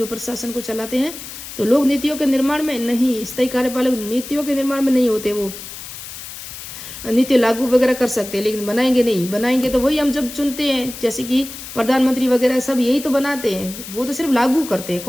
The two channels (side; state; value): left; noise; hiss, 12 dB below the sound